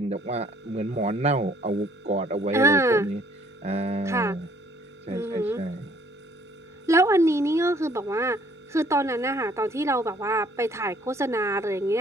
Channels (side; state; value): both; normal; correlation 0.61